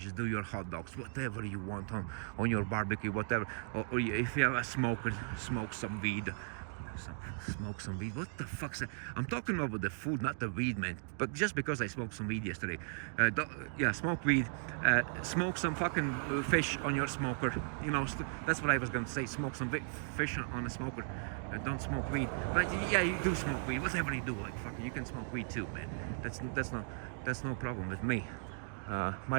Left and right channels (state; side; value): silent; left; digital silence